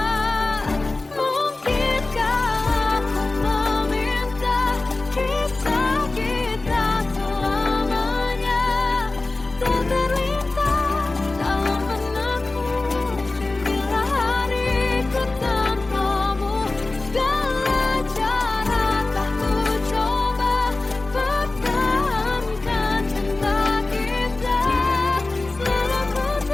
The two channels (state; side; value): quieter; right; 3.2 dB